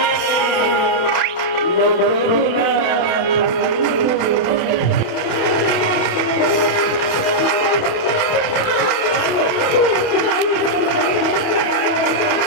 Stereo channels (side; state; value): right; late; 28 ms